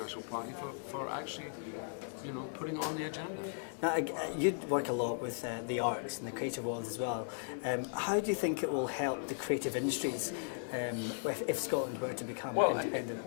Party for actually, putting on the agenda. Now, you work a lot with the arts and the creative world as well. How do you think it will help the creative industries if Scotland were to become independent?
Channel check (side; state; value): right; silent; 53 dB below the other